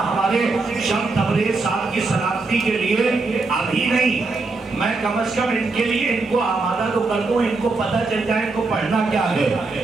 شم تبریز صاحب کی سلامتی کے لیے ابھی نہیں میں کم از کم ان کے لیے ان کو آمادہ تو کر دوں. ان کو پتہ چل جائے ان کو پڑھنا کیا ہے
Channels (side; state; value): left; quieter; 3.7 dB